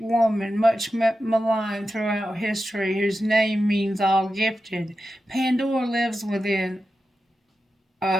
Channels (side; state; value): both; normal; correlation 0.91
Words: woman, much maligned throughout history, whose name means all gifted. Pandora lives within